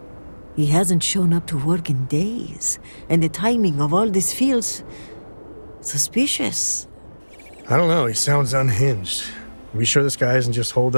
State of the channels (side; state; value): both; inverted; correlation -1.00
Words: He hasn't shown up to work in days, and the timing of all this feels suspicious. I don't know, he sounds unhinged. Are we sure this guy isn't just holed